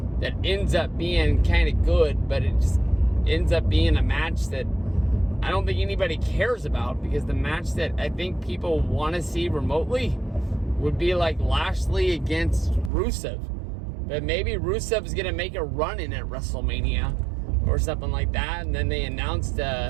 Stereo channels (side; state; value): left; drops out; at 12.9 s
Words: that ends up being kind of good, but it just ends up being a match that I don't think anybody cares about, because the match that I think people want to see remotely would be like Lashley against Rusev. But maybe Rusev is going to make a run in at WrestleMania or something like that, and then they announced